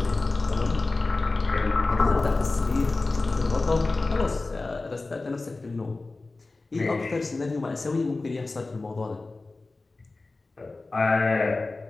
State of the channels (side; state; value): right; quieter; 3.4 dB